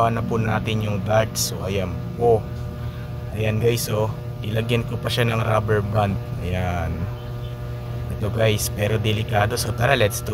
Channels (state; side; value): identical; both; correlation 1.00